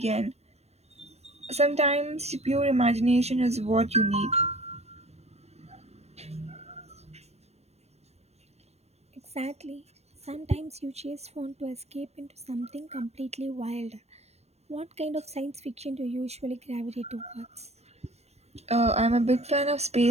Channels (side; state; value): left; late; 0.31 ms